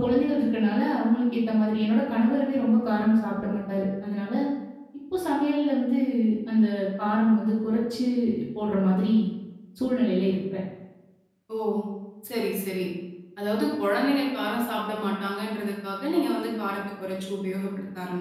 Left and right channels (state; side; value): identical; both; correlation 1.00